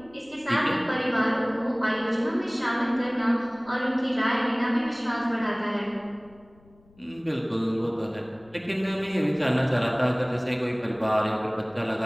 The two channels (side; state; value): left; noise; rumble, 28 dB below the sound